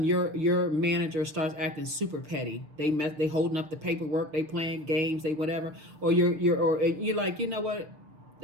your manager starts acting super petty. They holding up the paperwork, they playing games, they whatever, or you're like, you know what,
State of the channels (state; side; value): late; left; 6.7 ms